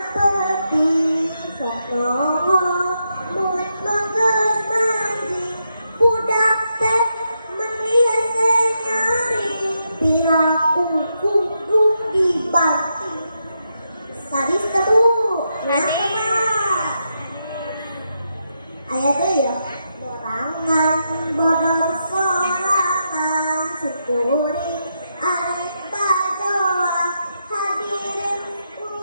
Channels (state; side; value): inverted; both; correlation -0.83